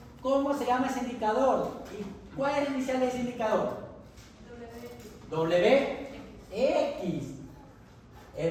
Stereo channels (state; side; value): identical; both; correlation 1.00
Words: cómo se llama ese indicador. ¿Y cuál es el inicial de ese indicador? WX,